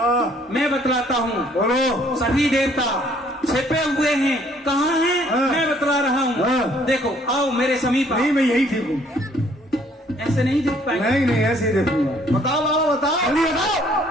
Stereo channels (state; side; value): normal; both; correlation 0.62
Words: मैं बतलाता हूँ। बोलो। सभी देवता छिपे हुए हैं। कहाँ हैं? हाँ। मैं बतला रहा हूँ। हाँ। देखो, आओ मेरे समीप आओ। नहीं, मैं यही ठीक हूँ। ऐसे नहीं देख पाएंगे। नहीं नहीं, ऐसे ही देखूंगा। बताओ बाबा, बताओ। जल्दी